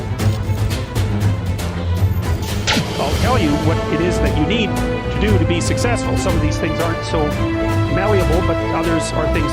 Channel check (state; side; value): identical; both; correlation 1.00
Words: I'll tell you what it is that you need to do to be successful. Some of these things aren't so malleable, but others are things